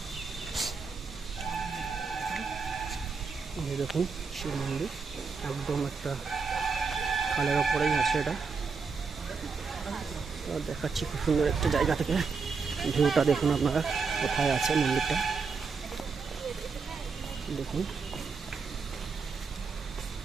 দেখুন শিব মন্দির একদম একটা খালের ওপরেই আছে, এটা দেখাচ্ছি খুব সুন্দর একটা জায়গা থেকে। ভিউটা দেখুন আপনারা, কোথায় আছে মন্দিরটা দেখুন।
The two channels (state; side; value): quieter; left; 5.0 dB